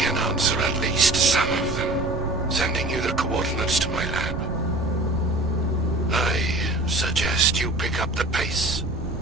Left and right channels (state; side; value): noise; right; rumble, 7 dB below the sound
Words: answer at least some of them, sending you the coordinates to my lab. I suggest you pick up the pace.